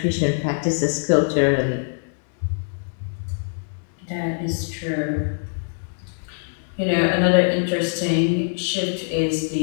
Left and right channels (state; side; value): silent; right; digital silence